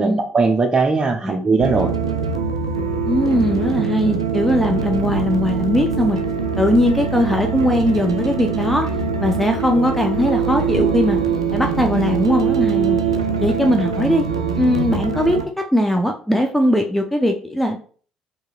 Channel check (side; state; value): both; normal; correlation 0.64